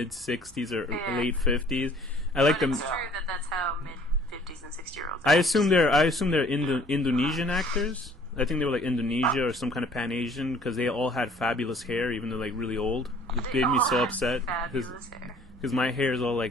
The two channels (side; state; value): both; normal; correlation 0.54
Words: 60s or late 50s. I like them. It's true that that's how mid-50s and 60-year-olds I assume they're Indonesian actors. I think they were like Indonesia or some kind of Pan-Asian because they all had fabulous hair, even though like really old. It They made me all so had upset fabulous hair. because my hair is all